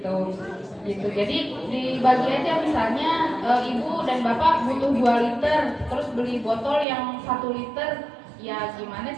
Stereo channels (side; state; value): left; drops out; at 6.9 s